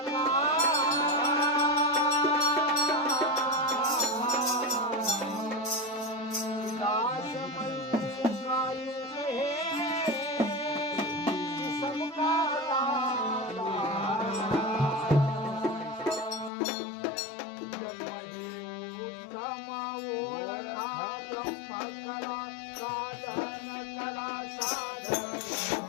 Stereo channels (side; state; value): right; drops out; at 16.5 s